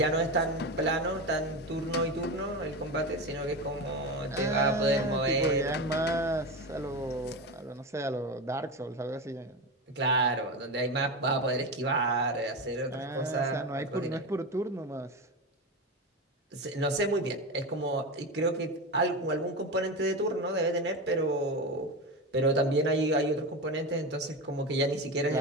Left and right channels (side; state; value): both; normal; correlation 0.20